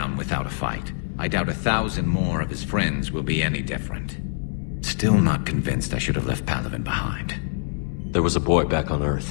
without a fight. I doubt 1,000 more of his friends will be any different. Still not convinced I should have left Palaven behind. There was a boy back on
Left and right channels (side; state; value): right; silent; digital silence